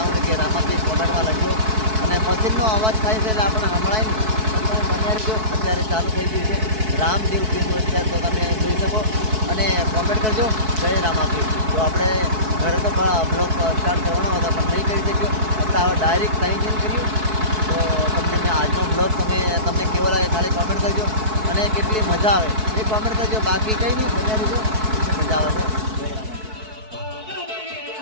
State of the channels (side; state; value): left; late; 4.6 ms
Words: કે રામાપીર કોમેન્ટમાં લખજો. અને મશીનનો અવાજ થાય છે એટલે આપણે સંભળાય નહીં, પણ તમે બન્યા રહેજો. અત્યારે ચાલુ થઈ ગયું છે રામદેવ પીરનું આખ્યાન, તો તમે જોઈ શકો અને કોમેન્ટ કરજો જય રામાપીર. તો આપણે ઘરે તો બ્લોગ સ્ટાર્ટ કરવાનો હતો પણ નહીં કરી શક્યો. આપણે હવે ડાયરેક્ટ કંઈ ચેન્જ કર્યું. તો તમને મેં આજનો બ્લોગ તમને કેવો લાગે ખાલી કોમેન્ટ કરજો અને કેટલી મજા આવે એ કોમેન્ટ કરજો. બાકી કંઈ નહીં, મજા લીધો મજા આવે છે.